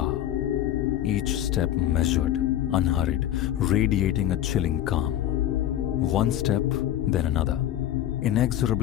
Each step measured, unhurried, radiating a chilling calm. One step, then another,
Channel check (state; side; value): quieter; right; 12.2 dB